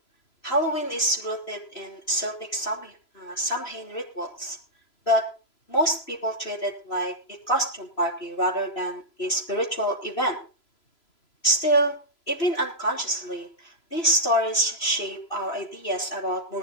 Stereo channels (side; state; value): right; late; 3.0 ms